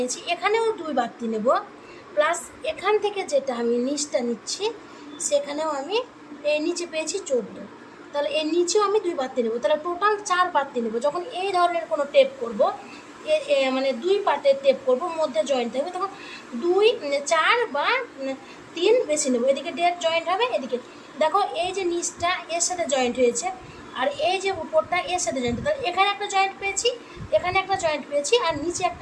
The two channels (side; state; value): both; identical; correlation 1.00